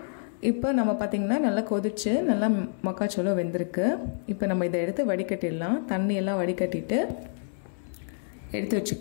இப்போ நம்ம பார்த்திங்கன்னா நல்லா கொதிச்சு நல்லா மக்காச்சோளம் வெந்திருக்கு. இப்போ நம்ம இதை எடுத்து வடிகட்டிடலாம். தண்ணியெல்லாம் வடிகட்டிட்டு எடுத்து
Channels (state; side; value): silent; right; 59 dB below the other